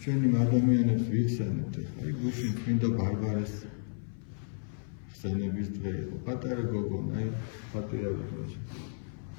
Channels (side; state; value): right; silent; 56 dB below the other